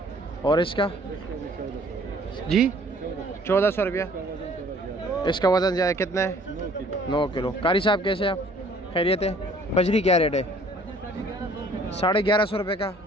और इसका जी 1400 रुपया। इसका वज़न ज़्यादा कितना है? 9 किलो। कारी साहब कैसे आप, खैरियत है? बजरी क्या रेट है? 1150 रुपये का।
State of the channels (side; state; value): both; normal; correlation 0.56